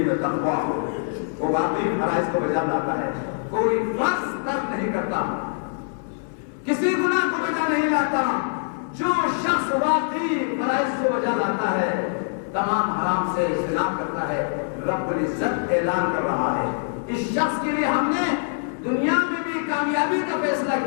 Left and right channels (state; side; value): silent; right; 59 dB below the other